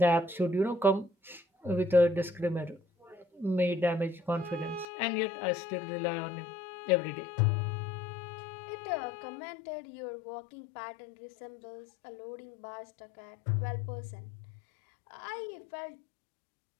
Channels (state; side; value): drops out; right; at 4.9 s